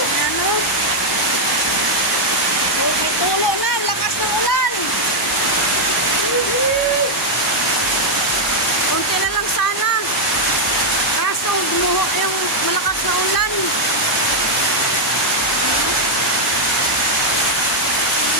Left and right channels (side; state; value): both; normal; correlation -0.02